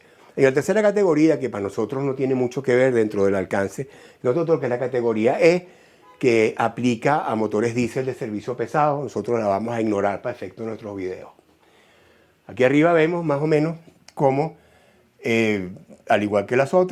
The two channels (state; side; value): identical; both; correlation 1.00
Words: En la tercera categoría, que para nosotros no tiene mucho que ver dentro del alcance, nosotros que es la categoría E, que aplica a motores diésel de servicio pesado, nosotros la vamos a ignorar para efecto de nuestros videos. Aquí arriba vemos más o menos cómo, al igual que las